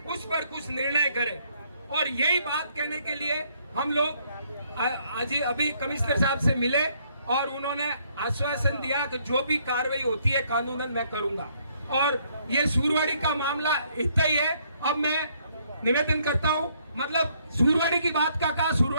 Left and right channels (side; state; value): both; inverted; correlation -0.68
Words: पर कुछ निर्णय करें। और यही बात कहने के लिए हम लोग आज अभी कमिश्नर साहब से मिले और उन्होंने आश्वासन दिया कि जो भी कार्रवाई होती है कानूनन मैं करूंगा। और ये सूरवाड़ी का मामला इतना ही है। अब मैं निवेदन करता हूं, मतलब सूरवाड़ी की बात का कहा,